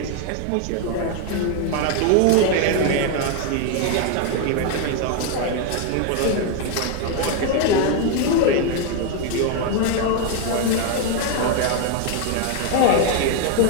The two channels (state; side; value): different; both; correlation 0.01